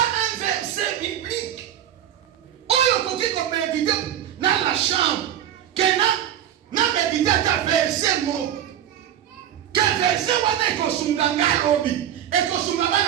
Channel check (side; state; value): left; quieter; 10.8 dB